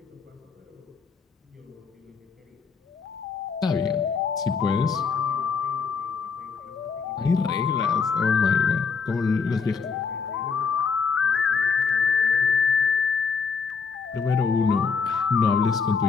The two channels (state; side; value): quieter; right; 5.4 dB